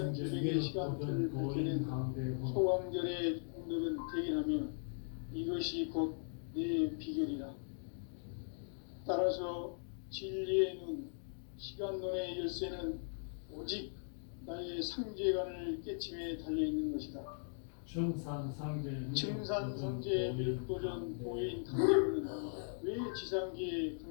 기백의 시간틀을 밝히는 소강절의 공덕은 대견하며 이것이 곧 내 비결이라. 따라서 진리의 눈, 시간론의 열쇠는 오직 나의 상제관을 깨침에 달려있는 것이다. 증산상제 밀도전 도인 강림은 왜 지상기에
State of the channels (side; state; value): right; silent; digital silence